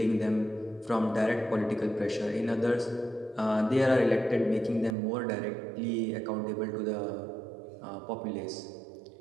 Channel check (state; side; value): drops out; left; at 5.0 s